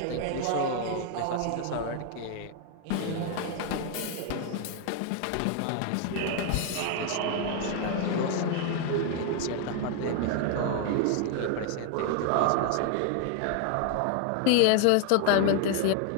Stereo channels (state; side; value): different; both; correlation 0.00